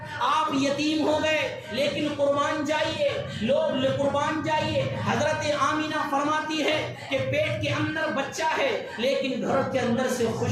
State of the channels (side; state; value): both; identical; correlation 1.00